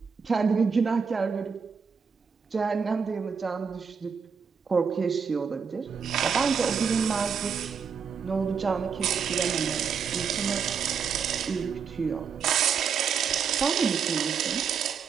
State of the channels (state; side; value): quieter; left; 6.3 dB